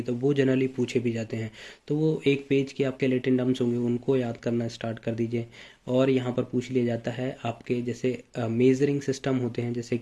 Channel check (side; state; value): both; identical; correlation 1.00